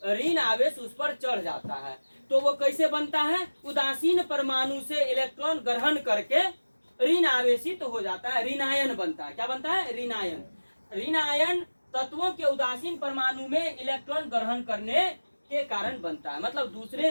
ऋण आवेश उस पर चढ़ जाता है। तो वो कैसे बनता है, उदासीन परमाणु से इलेक्ट्रॉन ग्रहण करके ऋण आवेशित हो जाता है, ऋण आयन बनता है। क्या बनता है, ऋण आयन। ऋण आयन तत्वों के उदासीन परमाणु में इलेक्ट्रॉन ग्रहण करने के कारण बनता है। मतलब दूसरे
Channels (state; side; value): inverted; both; correlation -1.00